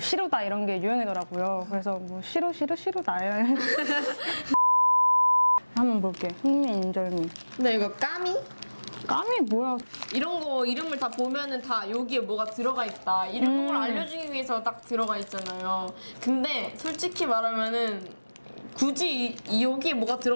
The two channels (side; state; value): both; inverted; correlation -1.00